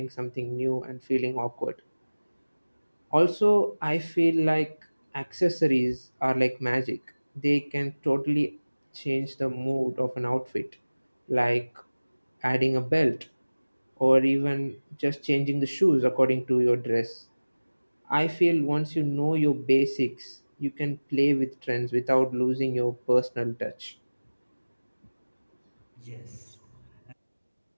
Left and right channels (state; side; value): inverted; both; correlation -1.00